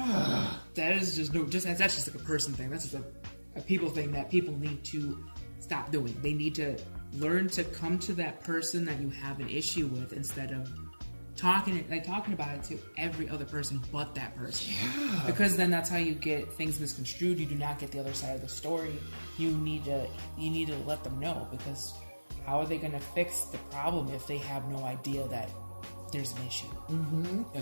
That is that's just like a person thing. That's just a people thing that people need to stop doing. They need to learn to come to that person that you have an issue with instead of talking about it to every other person but that person. Yeah. Because then that's how you get things misconstrued. You do not get the other side of the story. You need to let them know, because how are they going to fix the problem if they have no idea that there's an issue?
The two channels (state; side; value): inverted; both; correlation -1.00